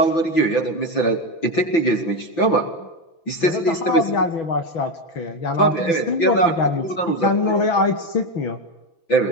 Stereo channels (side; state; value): right; late; 5.9 ms